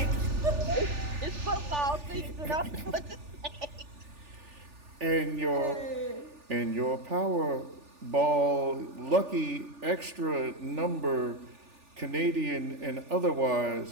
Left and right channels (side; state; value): left; late; 3.4 ms